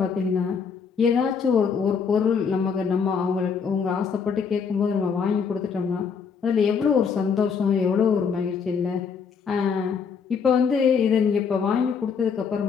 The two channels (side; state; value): right; quieter; 6.1 dB